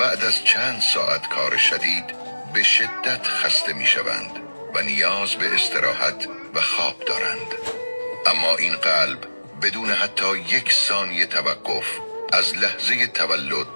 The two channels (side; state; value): both; inverted; correlation -1.00